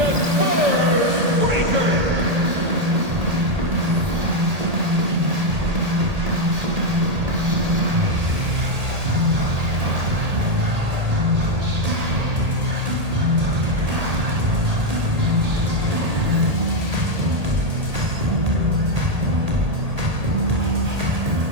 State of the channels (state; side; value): late; left; 1.8 ms